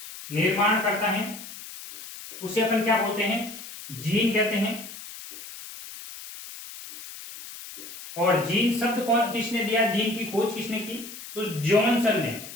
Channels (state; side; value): noise; left; hiss, 13 dB below the sound